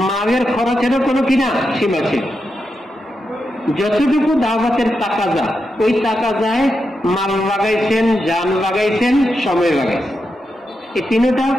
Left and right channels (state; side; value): normal; both; correlation 0.86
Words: মালের খরচেরও কোনো কিনা সীমা ছিল। যতটুকু দাওয়াতের টাকা যায় ওই টাকা যায়, মাল লাগাইছেন, জান লাগাইছেন, সময় লাগাইছেন। এই তিনটা